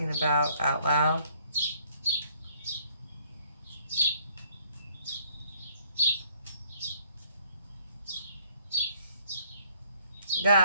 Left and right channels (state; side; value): inverted; both; correlation -0.63